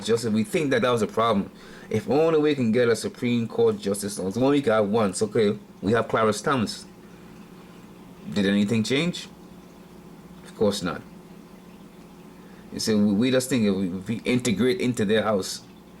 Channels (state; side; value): identical; both; correlation 1.00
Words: justice. We think that was a problem. If only we can get a Supreme Court justice, only we can have one. So, okay, we have Clarence Thomas. Did anything change? Of course not. You see, we just think if we integrate into their house,